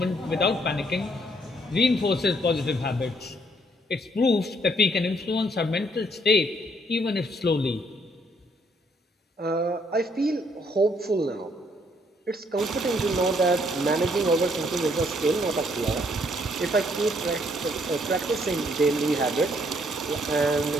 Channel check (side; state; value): both; normal; correlation 0.68